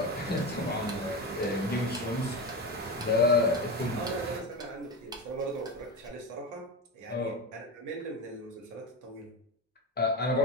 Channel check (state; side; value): normal; both; correlation 0.20